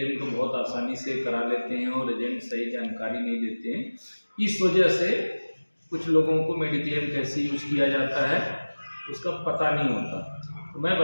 को बहुत आसानी से करा लेते हैं और एजेंट सही जानकारी नहीं देते हैं। इस वजह से कुछ लोगों को मेडिक्लेम कैसे यूज़ किया जाता है उसका पता नहीं होता। तो मैं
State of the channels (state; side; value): inverted; both; correlation -1.00